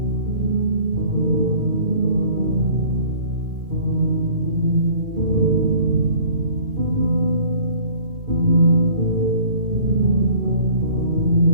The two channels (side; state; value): left; late; 2.4 ms